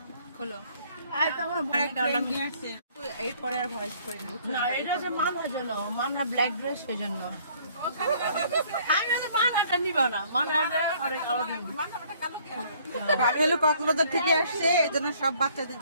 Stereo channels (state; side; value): inverted; both; correlation -0.60